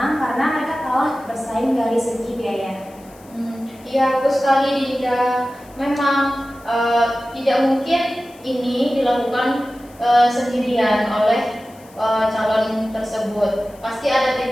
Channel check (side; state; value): left; noise; hiss, 26 dB below the sound